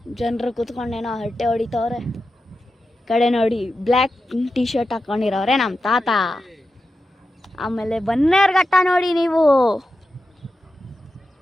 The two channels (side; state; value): both; normal; correlation 0.91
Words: ಜನರು ಕೂತ್ಕೊಂಡೇನೋ ಹರಟೆ ಹೊಡಿತವ್ರೆ. ಕಡೆ ನೋಡಿ ಬ್ಲ್ಯಾಕ್ ಟಿ ಶರ್ಟ್ ಹಾಕೊಂಡಿರೋರೆ ನಮ್ಮ ತಾತ. ಆಮೇಲೆ ಬನ್ನೇರುಘಟ್ಟ ನೋಡಿ ನೀವು.